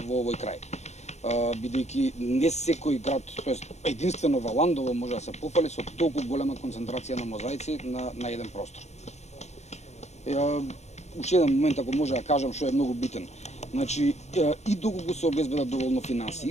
овој крај. Бидејќи не секој град, тоест единствено Валандово може да се пофали со толку голема концентрација на мозаици на еден простор. Уште еден момент, ако може да кажам, што е многу битен. Значи, и доколку се обезбедат доволно финанси,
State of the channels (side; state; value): right; late; 0.32 ms